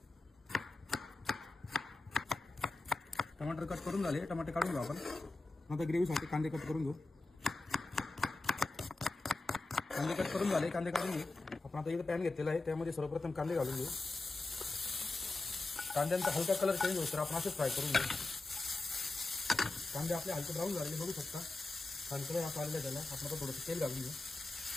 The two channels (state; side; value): quieter; right; 3.2 dB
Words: टमाटर कट करून झाले, टमाटे काढून घेऊ आपण। नंतर ग्रेव्हीसाठी कांदे कट करून घेऊ। कांदे कट करून झाले, कांदे काढून घेऊ आपण। आता इथे पॅन घेतलेला आहे, त्यामध्ये सर्वप्रथम कांदे घालून घेऊ। कांद्यांचा हलका कलर चेंज होतो, आपण असेच फ्राय करून घेऊ। कांदे आपले हलके ब्राऊन झालेले बघू शकता, हलकं आता आलेलं त्याला आपण आता थोडंसं तेल घालून घेऊ।